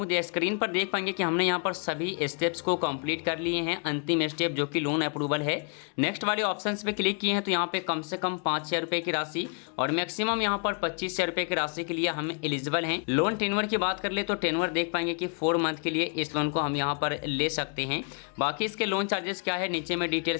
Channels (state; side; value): quieter; right; 39.2 dB